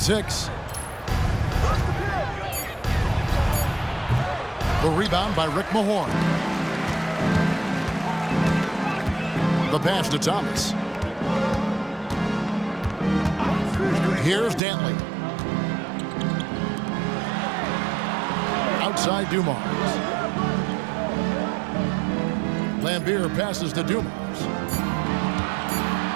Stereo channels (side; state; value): left; drops out; at 14.6 s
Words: The rebound by Rick Mahorn. The pass to Thomas. Here's Dantley. Outside Dumars. Lambier passes to Dumars.